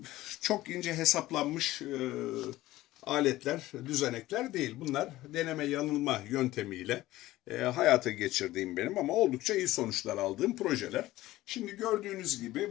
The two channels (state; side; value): quieter; right; 16.6 dB